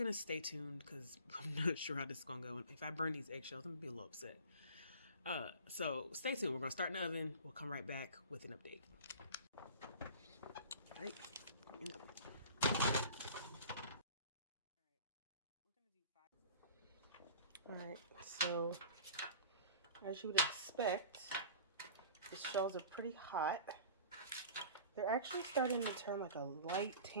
stay tuned because I'm not sure how this is gonna go. If I burn these eggshells, I'm gonna be a little upset. So stay tuned. We're gonna start in the oven. We'll come right back with an update. All right. All right. So as you would expect, the shells are pretty hot. They're actually starting to turn like a light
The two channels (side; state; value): both; inverted; correlation -0.41